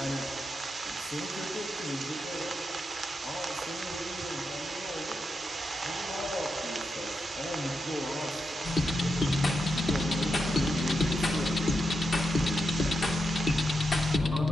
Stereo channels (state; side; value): normal; both; correlation 0.86